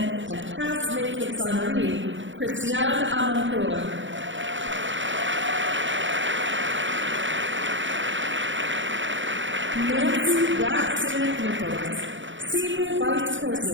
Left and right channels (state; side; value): late; left; 0.55 ms